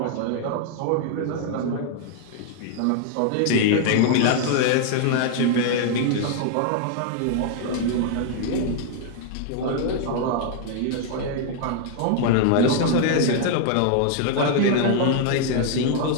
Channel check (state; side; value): different; both; correlation 0.00